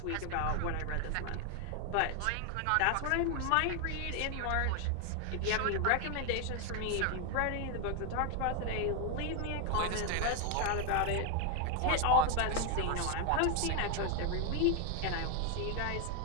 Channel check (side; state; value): both; different; correlation 0.01